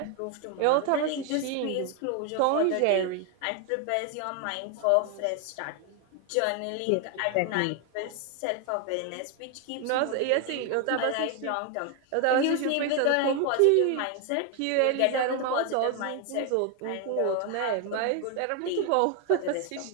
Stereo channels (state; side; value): different; both; correlation 0.01